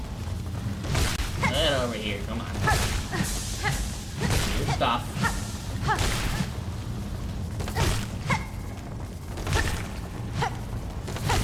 Get over here, come on. Good stuff.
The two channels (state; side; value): identical; both; correlation 1.00